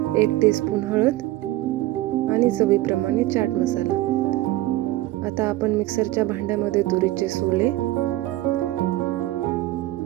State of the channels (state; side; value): quieter; left; 16.6 dB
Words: 1 टीस्पून हळद आणि चवीप्रमाणे चाट मसाला. आता आपण मिक्सरच्या भांड्यामध्ये तुरीचे सोले,